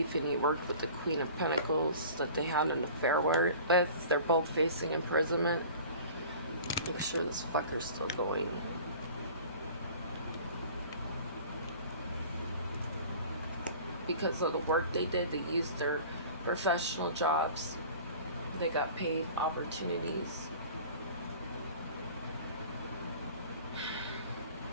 and he worked with the Queen of Pentacles that they had an affair with. They're both facing imprisonment. Make sure this fucker's still going. Because of the work they did, they used their professional jobs. They got paid opportunities.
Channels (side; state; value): both; inverted; correlation -0.44